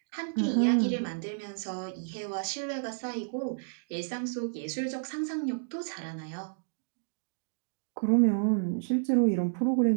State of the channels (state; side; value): silent; left; digital silence